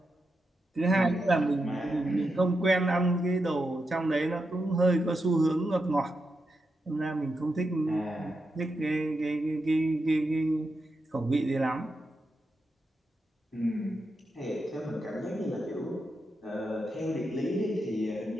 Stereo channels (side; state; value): both; normal; correlation 0.87